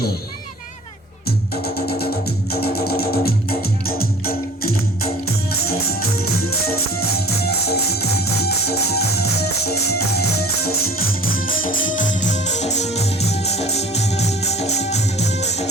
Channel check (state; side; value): normal; both; correlation 0.46